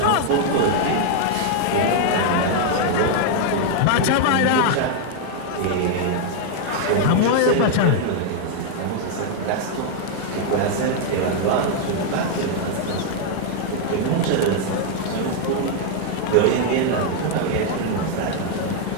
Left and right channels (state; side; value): different; both; correlation 0.00